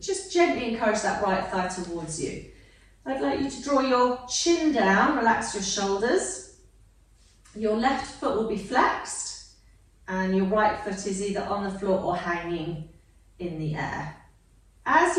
just gently encourage that right thigh towards you. I'd like you to draw your chin down, relax your shoulders. Your left foot will be flexed and your right foot is either on the floor or hanging in the air. As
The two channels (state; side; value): identical; both; correlation 1.00